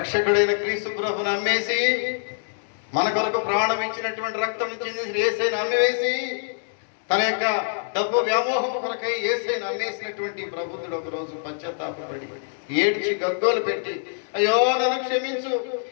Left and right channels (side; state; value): right; silent; digital silence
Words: క్రీస్తు ప్రభుని అమ్మేసి, మన కొరకు ప్రాణం ఇచ్చినటువంటి రక్తం చెందిన యేసయ్యను అమ్మివేసి, తన యొక్క డబ్బు వ్యామోహం కొరకై యేసయ్యను అమ్మేసినటువంటి ప్రభుత్వుడు ఒక రోజు పశ్చాత్తాపపడి ఏడ్చి గగ్గోలు పెట్టి, అయ్యో నన్ను క్షమించు,